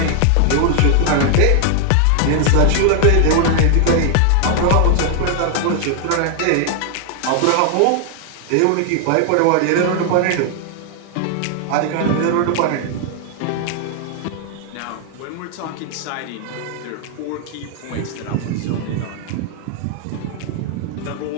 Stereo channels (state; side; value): different; both; correlation 0.00